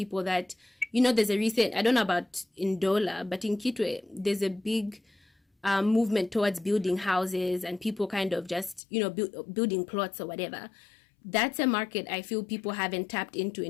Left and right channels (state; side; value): drops out; right; at 8.8 s